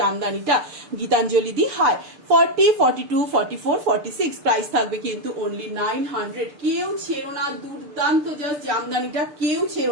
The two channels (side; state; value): left; late; 6.7 ms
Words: গীতাঞ্জলি দি। হাই 40 42 44 46, প্রাইস থাকবে কিন্তু অনলি 900। কেউ ছেড়ো না, দুর্দান্ত জাস্ট জামদানিটা, কেউ